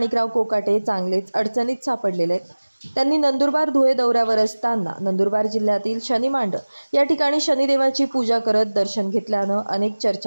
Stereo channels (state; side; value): inverted; both; correlation -1.00